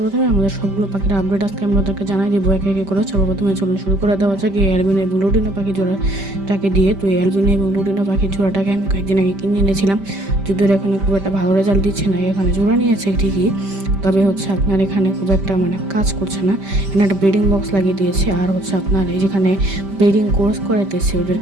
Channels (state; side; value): late; left; 5.1 ms